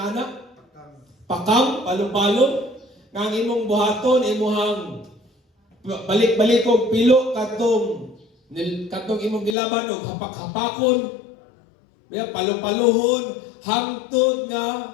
anak? Pakam, palo-palo, nga ang imong buhaton, imuhang balik-balik og pilo katong imong gilaban og hapak-hapakon, palo-palohon, hangtod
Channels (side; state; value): right; drops out; at 9.6 s